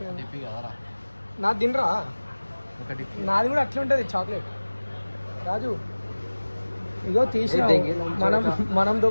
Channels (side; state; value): both; inverted; correlation -1.00